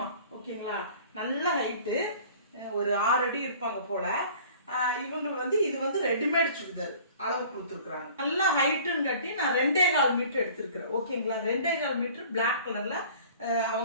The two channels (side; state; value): both; inverted; correlation -0.48